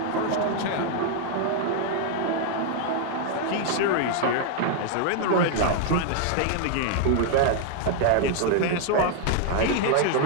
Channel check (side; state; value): both; different; correlation 0.00